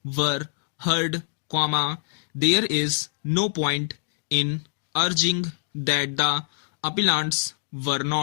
were heard, there is no point in urging that the appellants were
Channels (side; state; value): right; silent; digital silence